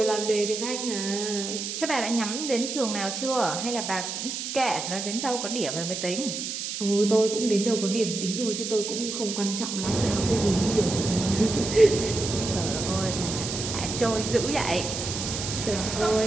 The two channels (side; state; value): right; noise; hiss, 5 dB below the sound